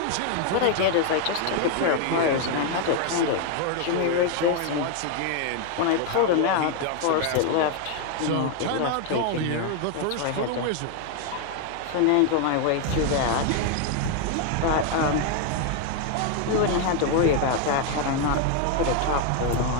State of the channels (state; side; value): different; both; correlation 0.01